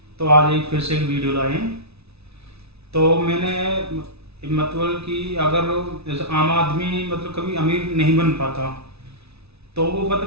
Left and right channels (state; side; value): late; left; 0.79 ms